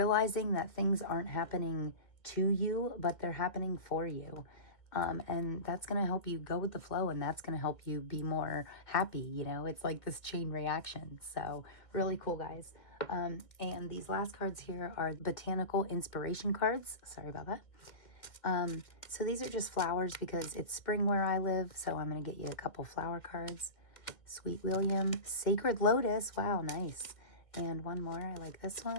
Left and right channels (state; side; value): late; right; 2.1 ms